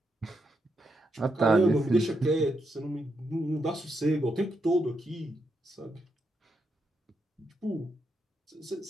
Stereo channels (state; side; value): normal; both; correlation 0.82